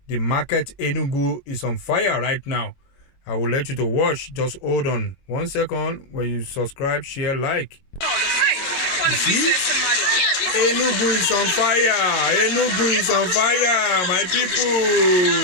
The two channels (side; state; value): right; late; 22 ms